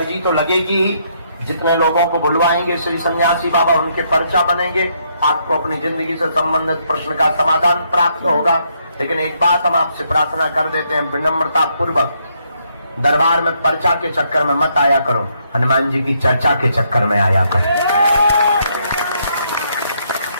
तो लगेगी ही। जितने लोगों को बुलवाएंगे श्री सन्यासी बाबा, उनके पर्चा बनेंगे, आपको अपनी जिंदगी से संबंधित प्रश्न का समाधान प्राप्त होगा। लेकिन एक बात हम आपसे प्रार्थना कर देते हैं, विनम्रता पूर्वक दरबार में पर्चा के चक्कर में मत आया करो, हनुमान जी की चर्चा के चक्कर में आया करो।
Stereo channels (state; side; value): inverted; both; correlation -0.73